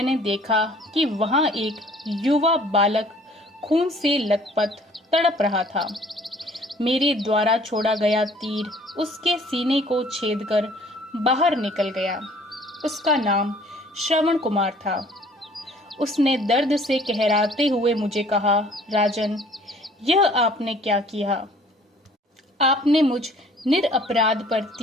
देखा कि वहां एक युवा बालक खून से लथपथ तड़प रहा था। मेरे द्वारा छोड़ा गया तीर उसके सीने को छेदकर बाहर निकल गया। उसका नाम श्रवण कुमार था। उसने दर्द से कहराते हुए मुझे कहा, राजन, यह आपने क्या किया? आपने मुझ निरपराध पर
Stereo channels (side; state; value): both; normal; correlation 0.55